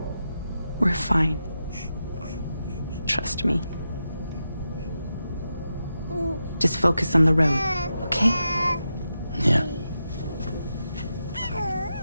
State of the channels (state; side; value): inverted; both; correlation -0.88